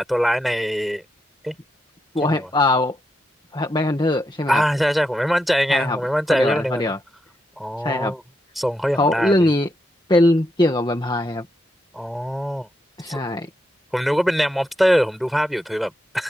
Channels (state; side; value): normal; both; correlation 0.83